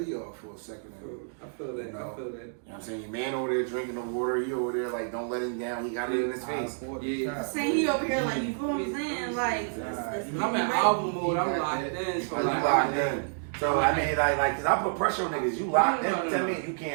off for a second. And, I feel that. you know, I feel that. You know what I'm saying? Your man over there drinking the water, he over there like, don't let him down. He got it in his face. Yeah. Say he over here like, you feel what I'm saying? Like, I'm in album mode. I'm locked in. So So you like, locked in. So I mean, like, cause I put pressure on niggas. You locked in. No. Tell me you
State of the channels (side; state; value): left; silent; digital silence